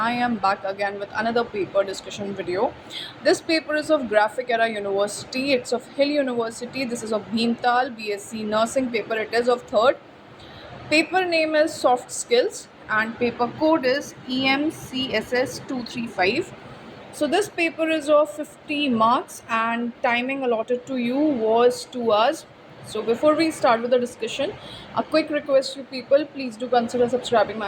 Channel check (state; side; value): identical; both; correlation 1.00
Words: am back again with another paper discussion video. This paper is of Graphic Era University. It's of Hill University. This is of Bhimtal BSc Nursing paper. It is of third. Paper name is Soft Skills and paper code is EMCSS235. So this paper is of 50 marks and timing allotted to you was 2 hours. So before we start with the discussion, a quick request to people, please do consider subscribing